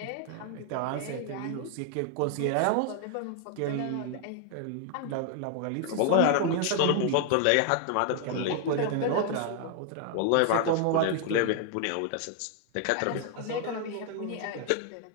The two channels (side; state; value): both; different; correlation 0.00